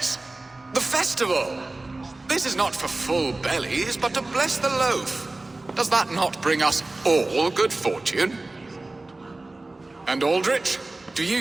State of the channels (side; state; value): left; quieter; 3.0 dB